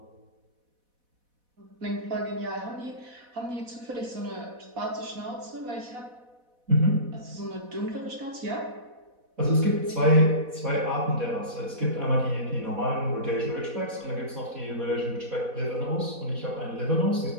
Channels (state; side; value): late; left; 4.1 ms